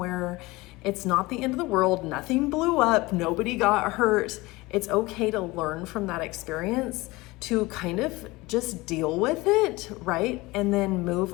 It's not the end of the world. Nothing blew up. Nobody got hurt. It's okay to learn from that experience, to kind of just deal with it, right? And then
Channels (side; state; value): right; quieter; 21.5 dB